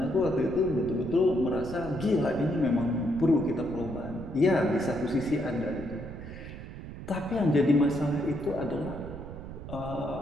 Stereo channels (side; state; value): right; noise; rumble, 11 dB below the sound